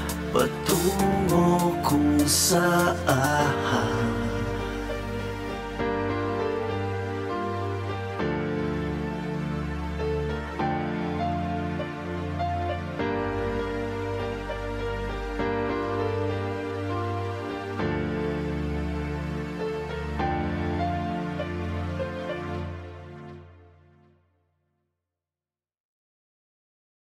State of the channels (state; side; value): identical; both; correlation 1.00